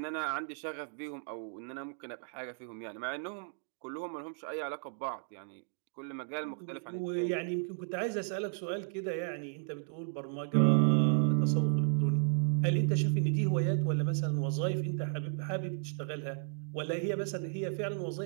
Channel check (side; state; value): left; silent; 55 dB below the other